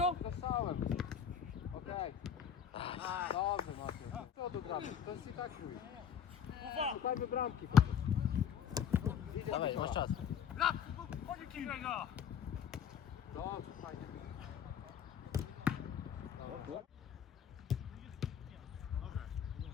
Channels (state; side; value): quieter; right; 8.2 dB